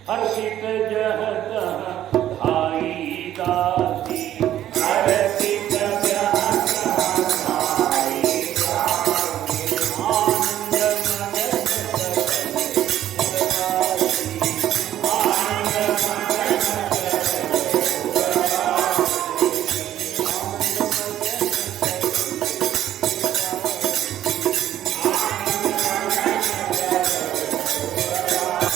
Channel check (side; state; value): left; quieter; 12.1 dB